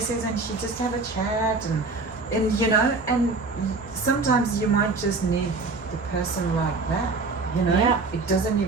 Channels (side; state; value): left; quieter; 3.8 dB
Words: and she just have a chat, and you know, and sometimes you might just need the person like that, you know. Yeah. It doesn't